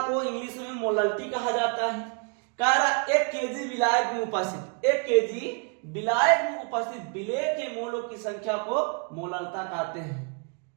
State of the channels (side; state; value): left; quieter; 37.3 dB